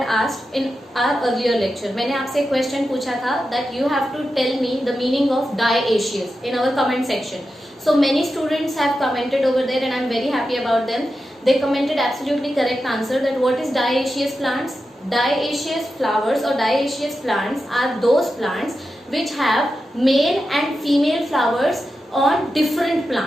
asked in our earlier lecture. मैंने आपसे एक question पूछा था that you have to tell me the meaning of dioecious in our comment section. So many students have commented over there and I am very happy about them. They commented absolutely correct answer that what is dioecious plants? Dioecious flowers or dioecious plants are those plants which have male and female flowers on different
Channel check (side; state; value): both; normal; correlation 0.90